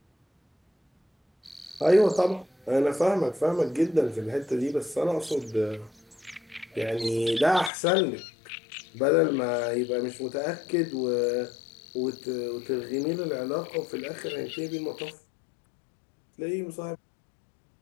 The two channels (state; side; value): drops out; right; at 7.7 s